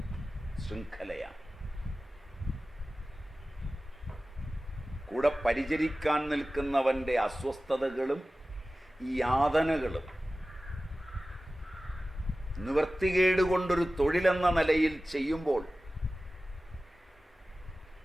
ശൃംഖലയാണ്. കൂടെ പരിചരിക്കാൻ നിൽക്കുന്നവൻ്റെ അസ്വസ്ഥതകളും യാതനകളും നിവൃത്തികേട് കൊണ്ടൊരു തൊഴിലെന്ന നിലയിൽ ചെയ്യുമ്പോൾ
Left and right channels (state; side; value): normal; both; correlation 0.96